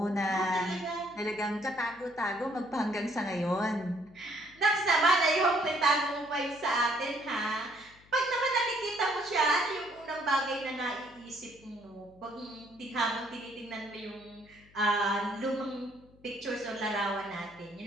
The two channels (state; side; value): noise; left; hum, 27 dB below the sound